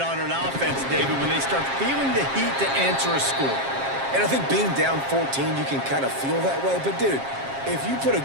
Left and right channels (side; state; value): left; late; 7.4 ms